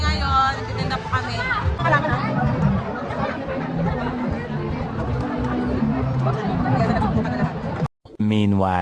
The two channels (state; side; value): identical; both; correlation 1.00